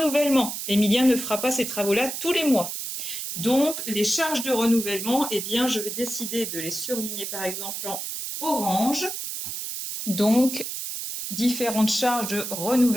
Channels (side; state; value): right; noise; hiss, 5 dB below the sound